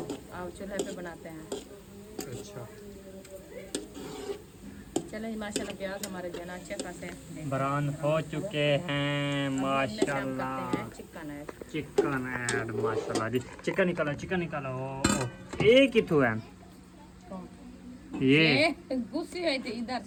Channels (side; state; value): both; identical; correlation 1.00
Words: चूल्हे पे बनाते हैं। अच्छा चलो माशाल्लाह प्याज हमारे जो है ना अच्छे खासे ब्राउन हो चुके हैं माशाल्लाह। चिकन है चिकन ऐड माशाल्लाह जी। चिकन निकालो चिकन निकालो। एक ही तो है ये गुस्से हुई थी इधर